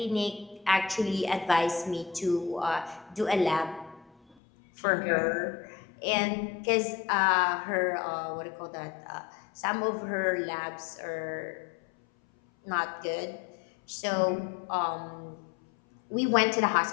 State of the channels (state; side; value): drops out; right; at 4.4 s